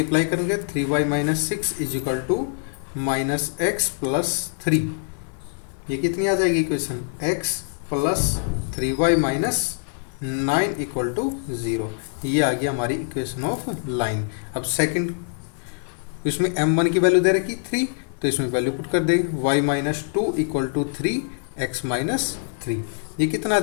करेंगे 3y minus 6 is equal to minus x plus 3। ये कितनी आ जाएगी equation, x plus 3y minus 9 equal to 0। ये आ गया हमारी इक्वेशन ऑफ लाइन। अब सेकंड, इसमें m1 की वैल्यू दे रखी 3, तो इसमें वैल्यू पुट कर देंगे y minus 2 equal to 3 x minus 3। ये कितना आ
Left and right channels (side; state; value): right; silent; 60 dB below the other